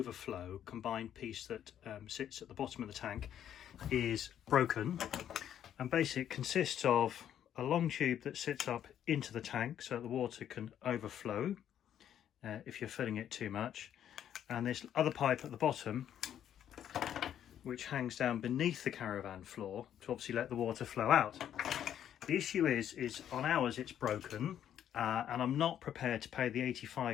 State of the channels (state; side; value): quieter; right; 10.1 dB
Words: combined piece that sits at the bottom of the tank is broken, and basically it consists of a long tube that sits up into the tank so the water can overflow if you're filling it too much, and this other pipe at the bottom which hangs down beneath the Caravan floor to obviously let the water flow out. The issue is on ours it's broken, and I'm not prepared to pay the